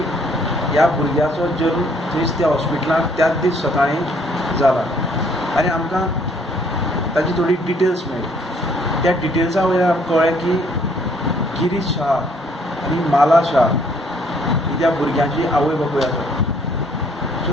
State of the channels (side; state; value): both; normal; correlation 0.63